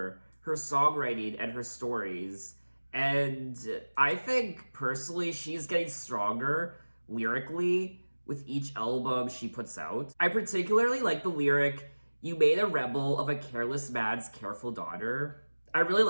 her songwriting and her stories. And I think, personally, she's getting stronger lyrically with each album she puts out. I particularly like the lyric, "You made a rebel of a careless man's careful daughter." I really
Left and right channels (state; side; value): inverted; both; correlation -1.00